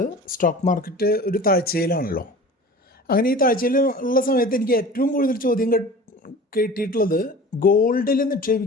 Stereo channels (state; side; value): normal; both; correlation 0.39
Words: stock market ഒരു താഴ്ചയിലാണല്ലോ. അങ്ങനെ ഈ താഴ്ചയിൽ ഉള്ള സമയത്ത് എനിക്ക് ഏറ്റവും കൂടുതൽ ചോദ്യം കേട്ടിട്ടുള്ളത് ഗോൾഡിൽ